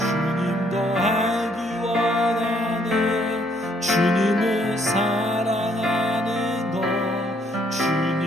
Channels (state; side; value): normal; both; correlation 0.68